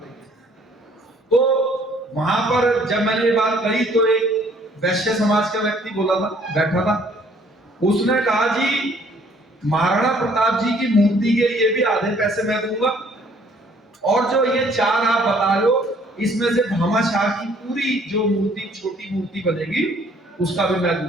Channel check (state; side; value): normal; both; correlation 0.60